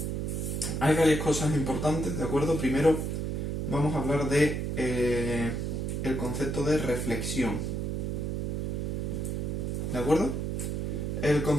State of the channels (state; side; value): noise; right; hum, 1 dB below the sound